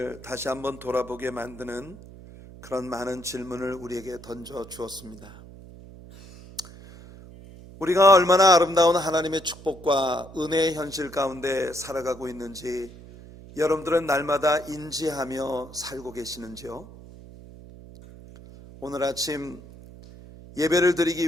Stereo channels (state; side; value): noise; right; hum, 18 dB below the sound